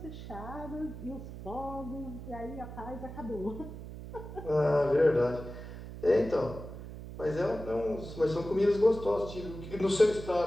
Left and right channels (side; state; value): right; noise; hum, 11 dB below the sound